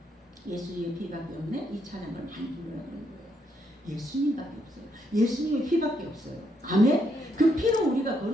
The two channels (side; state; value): both; normal; correlation 0.76